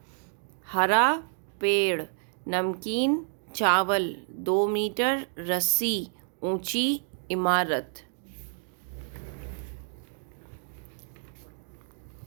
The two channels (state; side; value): silent; left; 58 dB below the other